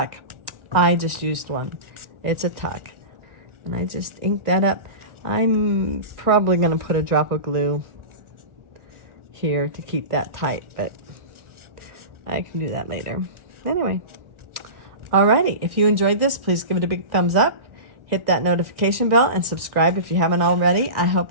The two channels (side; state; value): left; late; 1.6 ms